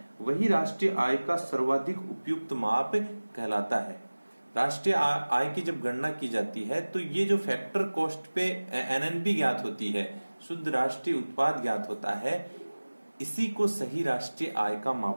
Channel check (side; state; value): both; inverted; correlation -1.00